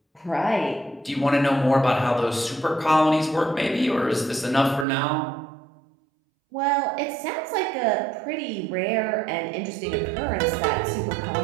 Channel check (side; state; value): left; drops out; at 4.9 s